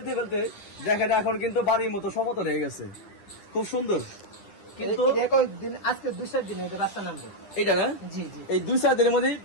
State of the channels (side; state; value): right; late; 9.9 ms